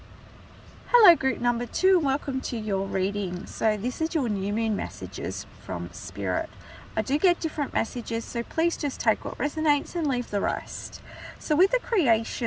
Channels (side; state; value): both; identical; correlation 1.00